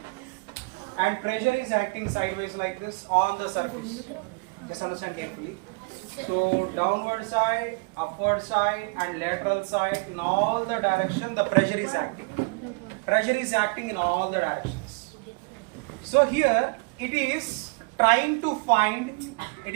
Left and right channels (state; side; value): quieter; left; 30.9 dB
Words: and pressure is acting sideways like this on the surface. Just understand carefully. So downward side, upward side and lateral side, in all the direction the pressure is acting. Pressure is acting in all the directions. So here it is trying to find